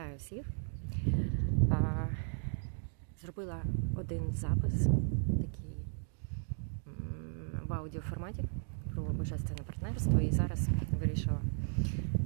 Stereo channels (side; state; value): left; silent; digital silence